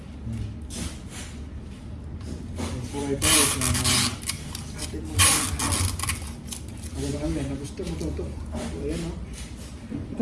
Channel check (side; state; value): both; identical; correlation 1.00